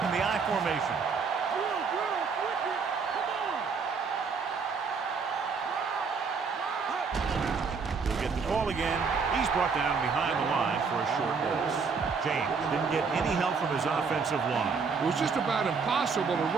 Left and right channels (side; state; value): left; quieter; 5.3 dB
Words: in the I formation. He'll get the call again. He's brought down behind the line for a short loss. James didn't get any help from his offensive line. It was just about impossible to